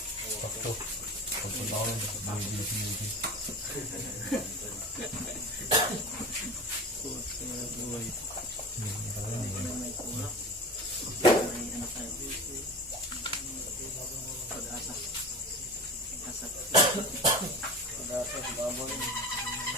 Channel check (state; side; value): normal; both; correlation 0.32